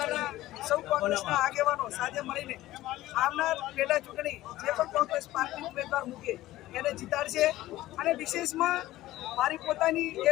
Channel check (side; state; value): right; quieter; 16.0 dB